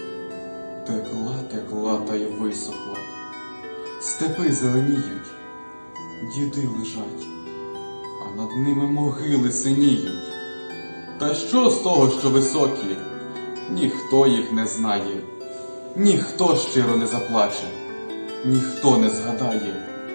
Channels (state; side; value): inverted; both; correlation -1.00